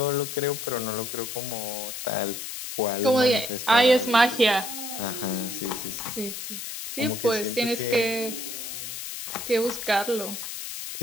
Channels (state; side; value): noise; left; hiss, 7 dB below the sound